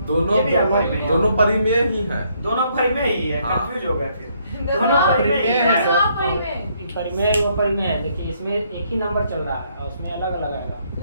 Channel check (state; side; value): inverted; both; correlation -0.70